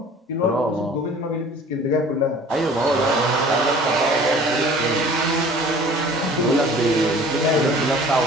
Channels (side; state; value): both; normal; correlation 0.48